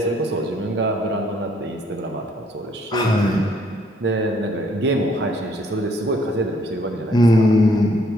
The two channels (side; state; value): both; normal; correlation 0.66